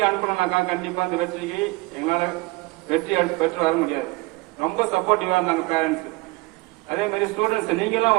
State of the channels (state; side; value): quieter; left; 23.9 dB